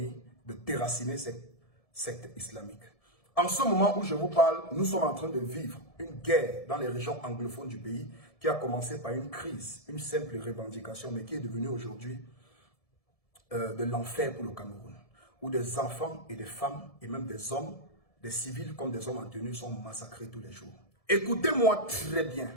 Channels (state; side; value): late; right; 1.7 ms